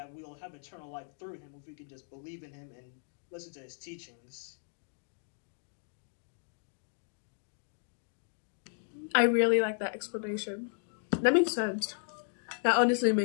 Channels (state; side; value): silent; right; digital silence